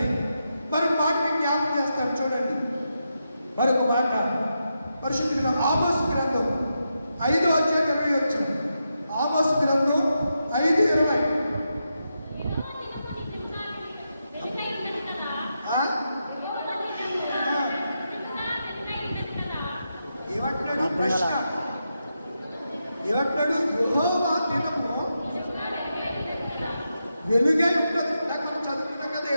మరొక మాట మీకు జ్ఞాపకం చేస్తాను చూడండి. మరొక మాట పరిశుద్ధ ఆమోసు గ్రంథం 5:20. ఆమోసు గ్రంథం 5:20. ఏమంటున్నాడు ప్రశ్న, ఏమంటున్నాడు? యెహోవా దినము వెలుగై ఉంటుంది. నాకు మనం చదువుకున్నాం కదా,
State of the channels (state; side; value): inverted; both; correlation -0.86